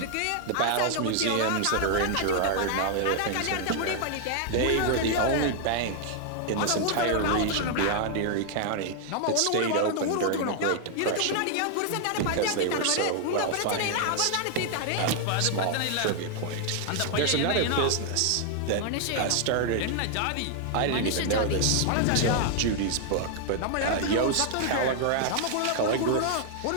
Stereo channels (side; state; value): both; different; correlation 0.00